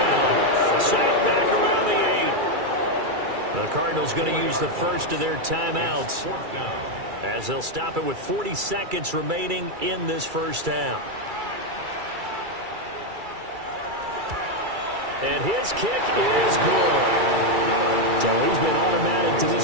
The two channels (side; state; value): left; late; 2.3 ms